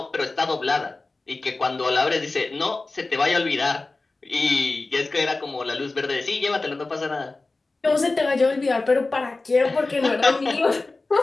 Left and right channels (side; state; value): right; quieter; 3.4 dB